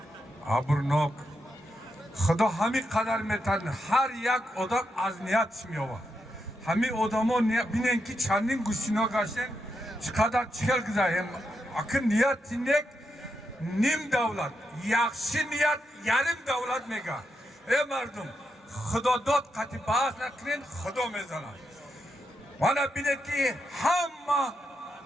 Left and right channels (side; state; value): both; normal; correlation 0.84